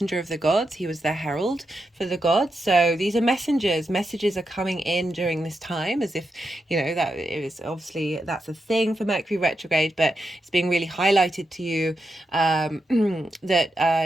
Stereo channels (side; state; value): both; normal; correlation 0.86